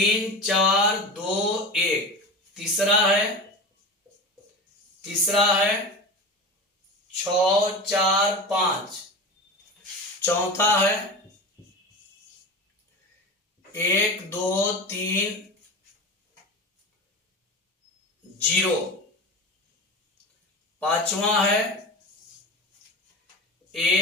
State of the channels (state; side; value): normal; both; correlation 0.28